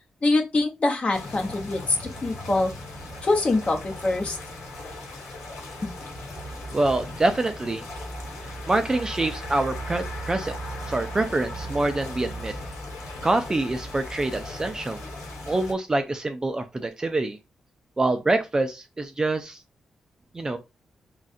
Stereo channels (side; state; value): both; normal; correlation 0.88